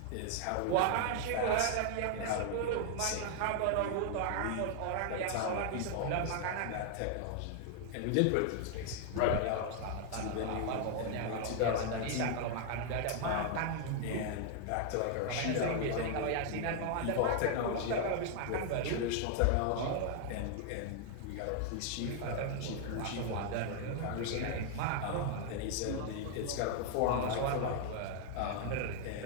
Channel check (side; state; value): both; different; correlation 0.00